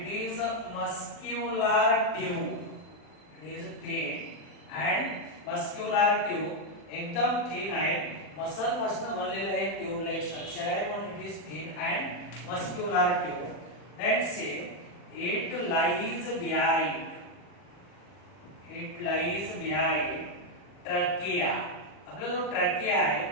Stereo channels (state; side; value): late; right; 40 ms